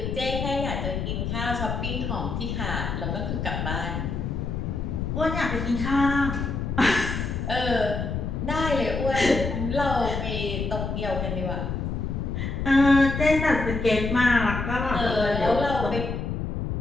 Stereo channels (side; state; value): left; noise; rumble, 3 dB below the sound